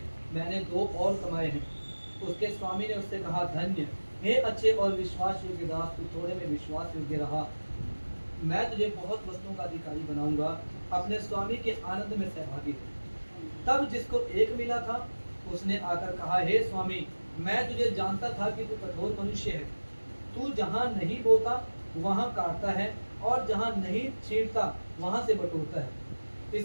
मैंने 2 और कमाए हैं। उसके स्वामी ने उससे कहा, धन्य हे अच्छे और विश्वास योग्य दास, तू थोड़े में विश्वास योग्य रहा, मैं तुझे बहुत वस्तुओं का अधिकारी बनाऊंगा। अपने स्वामी के आनंद में सहभागी हो। तब जिसको 1 मिला था उसने आकर कहा, हे स्वामी, मैं तुझे जानता था कि तू कठोर मनुष्य है। तू जहाँ नहीं बोता वहाँ काटता है, और जहाँ नहीं छींटता वहाँ से बटोरता है।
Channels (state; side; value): inverted; both; correlation -1.00